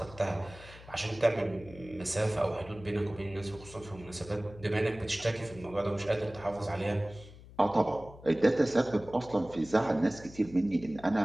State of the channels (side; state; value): left; noise; hum, 18 dB below the sound